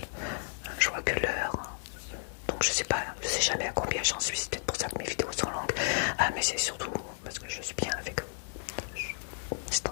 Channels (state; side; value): silent; right; digital silence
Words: Je vois que l'heure. Donc je sais jamais à combien j'en suis. C'est peut-être pour ça que mes vidéos sont longues. Ah, mais c'est surtout parce que je suis bien avec eux. C'est